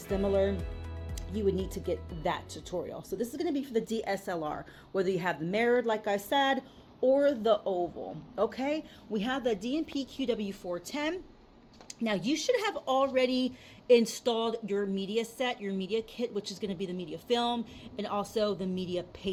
You would need to get that tutorial. So this is going to be for the DSLR, whether you have the mirrored, like I said, or the oval. Okay, we have the DNP QW410. Now you should have already installed your media set, your media kit, which is going to be the media film and also the media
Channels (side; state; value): both; identical; correlation 1.00